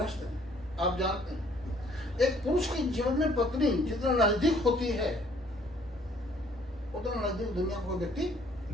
हैं, आप जानते हैं एक पुरुष के जीवन में पत्नी जितना नजदीक होती है उतना नजदीक दुनिया को व्यक्ति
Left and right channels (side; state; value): both; normal; correlation 0.61